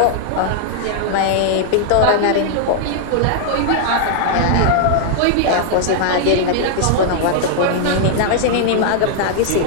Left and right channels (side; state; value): both; different; correlation -0.01